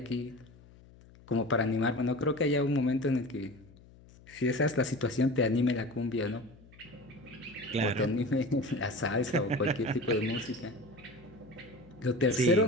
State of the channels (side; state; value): left; noise; hum, 24 dB below the sound